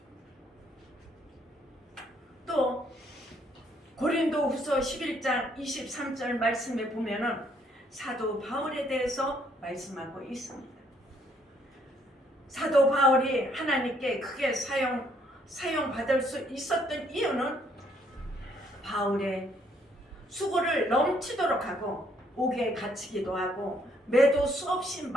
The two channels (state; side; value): normal; both; correlation 0.68